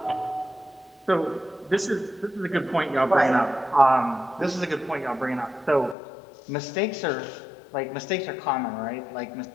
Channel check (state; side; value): drops out; right; at 6.0 s